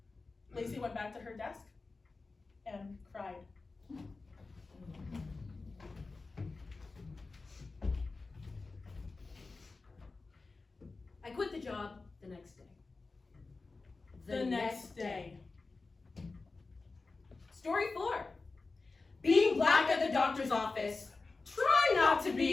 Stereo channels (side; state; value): right; quieter; 3.8 dB